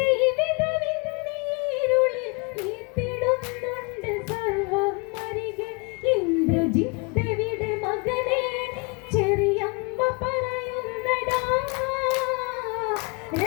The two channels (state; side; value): quieter; right; 30.7 dB